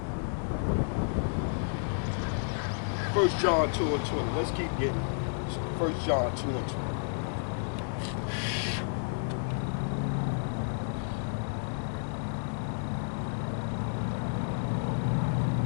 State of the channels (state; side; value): silent; right; digital silence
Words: 1 John 2 and 20. Let's keep getting. 1 John 2 and 20.